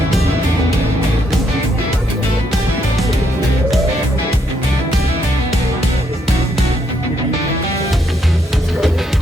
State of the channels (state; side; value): normal; both; correlation 0.75